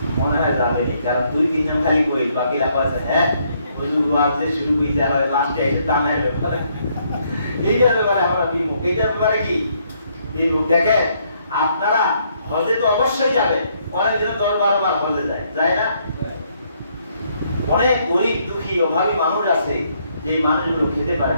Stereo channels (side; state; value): both; inverted; correlation -0.71